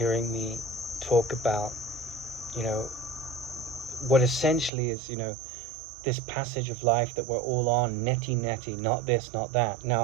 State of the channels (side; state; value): left; drops out; at 4.7 s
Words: me talk about, you know, what essentially is, you know, this passage of life that we're all on, neti, not this, not that.